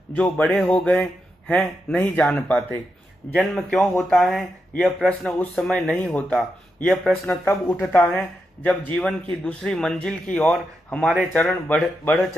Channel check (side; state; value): both; normal; correlation 0.85